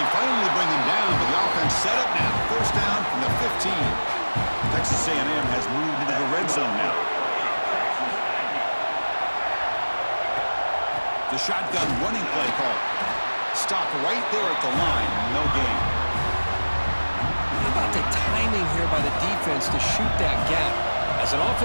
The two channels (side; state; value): both; inverted; correlation -1.00